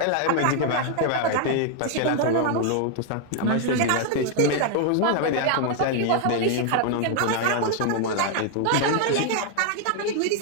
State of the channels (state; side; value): different; both; correlation 0.00